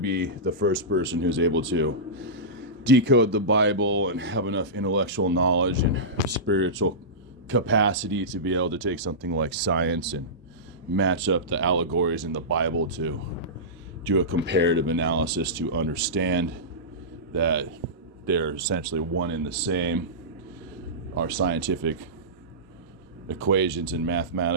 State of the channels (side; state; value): both; normal; correlation -0.17